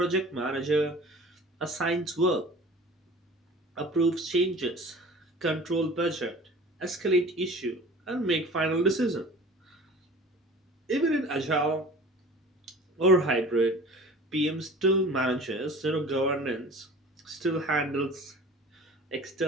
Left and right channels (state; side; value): normal; both; correlation 0.42